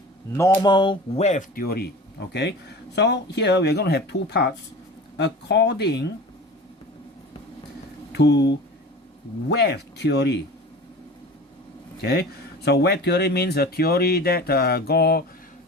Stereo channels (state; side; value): normal; both; correlation 0.37